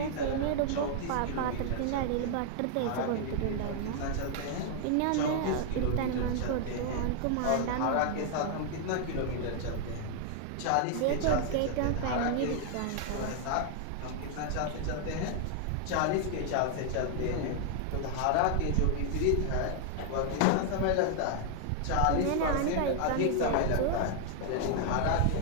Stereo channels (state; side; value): different; both; correlation 0.00